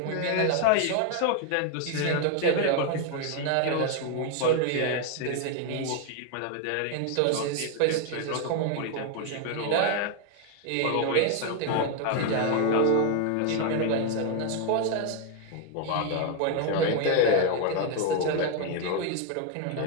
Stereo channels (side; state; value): both; different; correlation 0.01